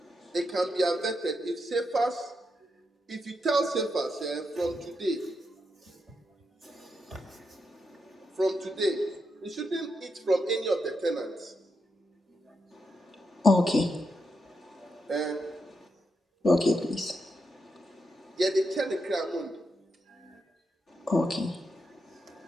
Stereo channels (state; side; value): normal; both; correlation 0.84